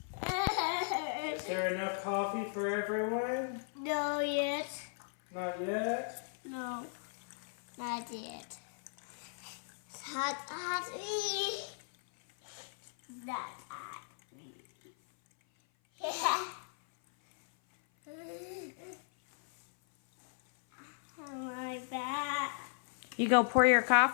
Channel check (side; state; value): right; silent; 54 dB below the other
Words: Is there enough coffee for everyone? No yet. Not yet? No. Not yet. It's hot, hot. Not hot. Yeah. My back. You go pour your